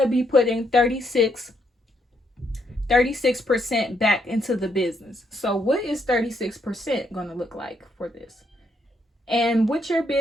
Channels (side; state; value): both; normal; correlation 0.75